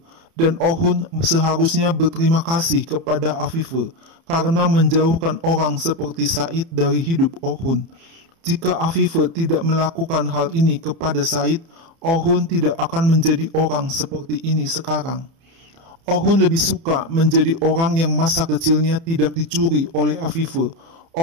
Dan Orhun seharusnya berterima kasih kepada Afife karena menjauhkan orang seperti Said dari hidup Orhun. Jika Afife tidak melakukan hal ini kepada Said, Orhun tidak akan menjadi orang seperti ini sekarang. Orhun lebih suka menjadi orang yang masa kecilnya tidak dicuri oleh Afife.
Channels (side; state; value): left; late; 30 ms